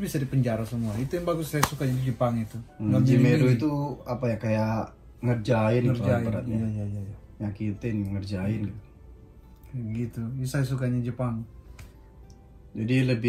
bisa dipenjara semua. Itu yang bagus saya suka di Jepang itu. Jimeru itu apa ya, kayak ngerjain gitu beratnya. Iya. Nyakitin, ngerjain gitu. Gitu. Ini saya sukanya Jepang. Jadi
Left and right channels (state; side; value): identical; both; correlation 1.00